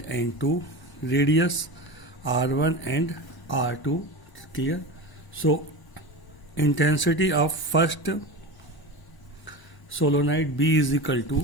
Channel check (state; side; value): late; right; 1.0 ms